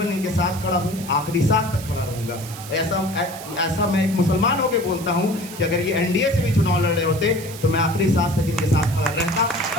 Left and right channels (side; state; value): right; noise; hiss, 14 dB below the sound